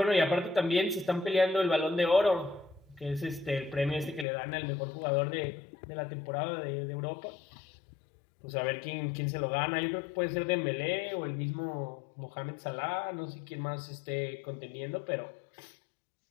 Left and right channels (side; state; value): right; drops out; at 4.2 s